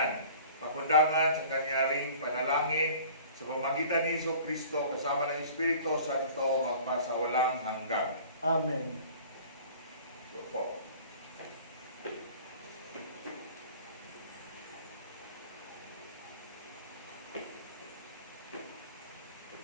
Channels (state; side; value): inverted; both; correlation -0.47